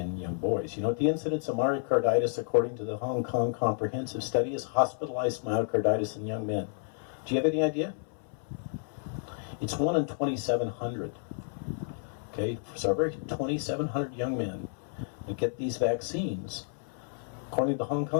young boys. You know what the incidence of myocarditis, according to the Hong Kong Comprehensive Study, is hospitalized myocarditis in young men. Do you have any idea? It's 1 in 2,700. Okay, so every 2,700 young men that get these vaccines, according to the Hong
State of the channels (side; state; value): right; silent; 57 dB below the other